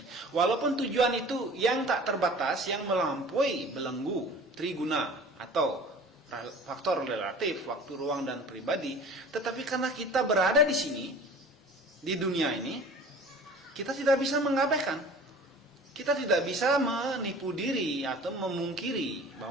Walaupun tujuan itu yang tak terbatas, yang melampaui belenggu triguna atau faktor relatif, waktu, ruang, dan pribadi, tetapi karena kita berada di sini, di dunia ini, kita tidak bisa mengabaikan. Kita tidak bisa menipu diri atau memungkiri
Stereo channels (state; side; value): normal; both; correlation 0.43